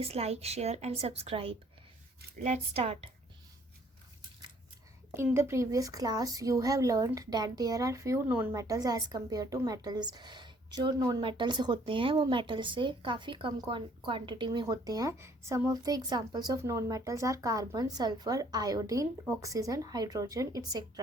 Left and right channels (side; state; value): both; normal; correlation 0.61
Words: like share and subscribe. Let's start. In the previous class you have learned that there are few non-metals as compared to metals। जो non metals होते हैं वो metal से काफ़ी कम quantity में होते हैं। Some of the examples of non metals are carbon, sulphur, iodine, oxygen, hydrogen